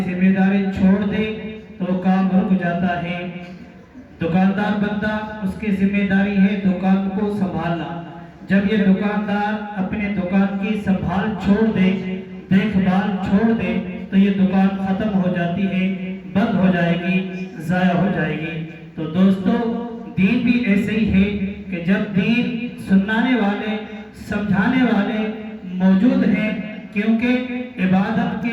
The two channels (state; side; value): identical; both; correlation 1.00